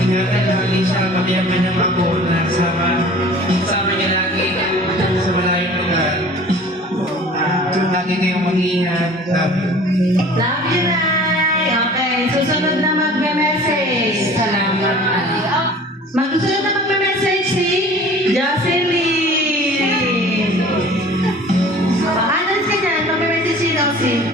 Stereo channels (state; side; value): normal; both; correlation 0.46